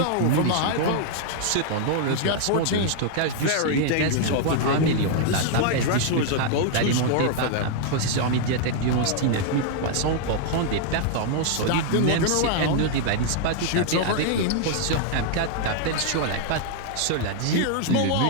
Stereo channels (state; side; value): different; both; correlation 0.00